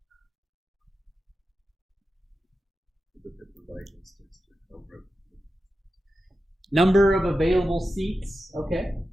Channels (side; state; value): both; normal; correlation 0.91